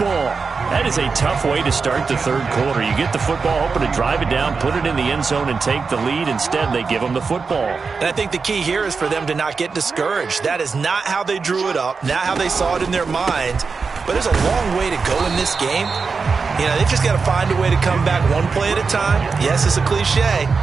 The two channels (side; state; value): left; quieter; 4.9 dB